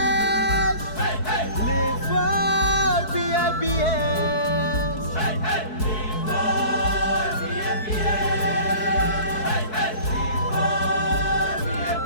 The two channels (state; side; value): late; right; 4.6 ms